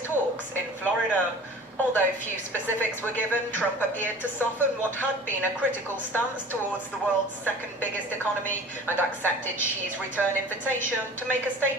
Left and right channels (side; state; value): both; normal; correlation 0.43